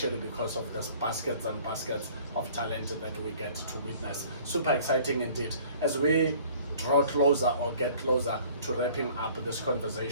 because of the baskets and baskets of talent that we get to witness. Super exciting indeed. As we draw closer or get closer to wrapping up this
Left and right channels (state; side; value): inverted; both; correlation -0.52